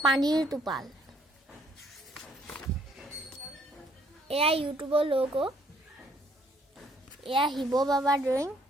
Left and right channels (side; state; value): both; normal; correlation 0.65